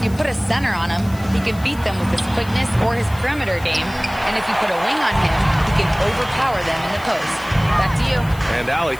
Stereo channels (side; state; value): left; noise; hiss, 20 dB below the sound